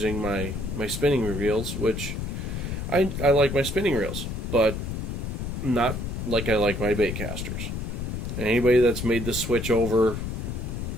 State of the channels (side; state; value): left; noise; rumble, 4 dB below the sound